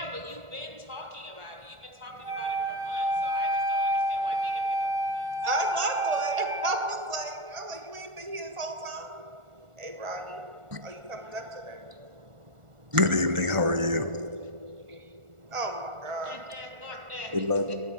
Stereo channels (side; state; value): left; late; 1.4 ms